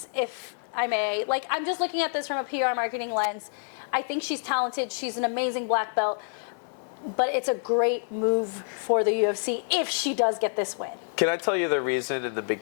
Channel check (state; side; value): silent; right; 60 dB below the other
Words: if I may. I'm just looking at this from a PR marketing lens. I think she's talented. She's an amazing black belt. But it's a great move for the UFC if she does get this win. Can I tell you the reason in the